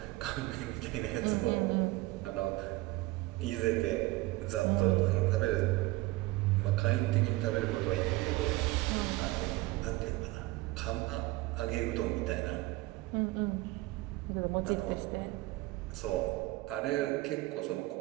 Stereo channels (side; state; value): left; quieter; 20.0 dB